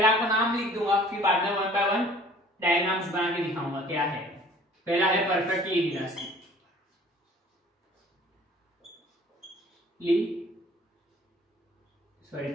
आपको नाम लिख दूंगा, फिर बाद में वन बाय वन डायग्राम्स बना के दिखाऊंगा क्या है। पहला है perfectly elastic,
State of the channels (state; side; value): normal; both; correlation 0.51